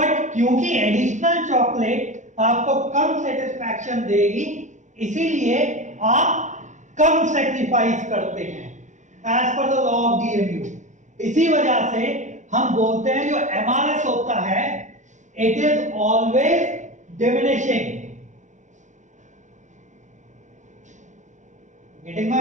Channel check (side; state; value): left; late; 0.35 ms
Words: क्योंकि एडिशनल चॉकलेट आपको कम सेटिस्फैक्शन देगी इसीलिए आप कम सेक्रीफाइस करते हैं as per the law of DMU. इसी वजह से हम बोलते हैं जो एमआरएस होता है it is always diminishing. Getting my